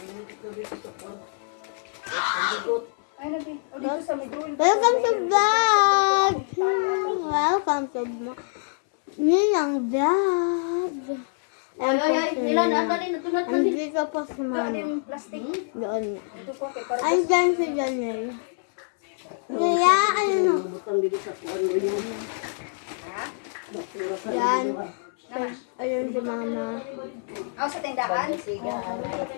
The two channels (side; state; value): right; silent; 61 dB below the other